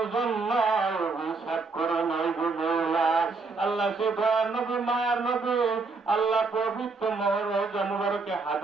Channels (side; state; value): left; quieter; 4.1 dB